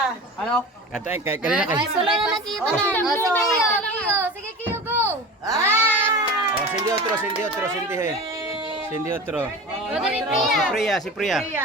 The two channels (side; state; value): both; normal; correlation 0.33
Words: Ano? Kanina kay. Ay, solo na nakita na. Sige, Kiyo. Sige, Kiyo, go. Oh, sindi otro. Sindi otro. O, dali, Si Priya.